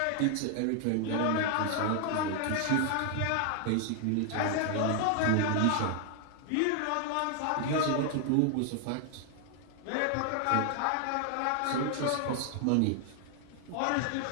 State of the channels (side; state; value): both; different; correlation 0.00